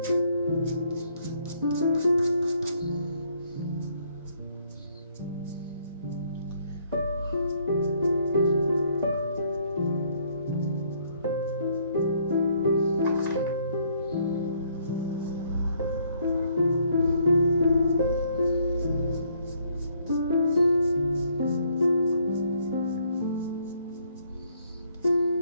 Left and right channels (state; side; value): inverted; both; correlation -0.67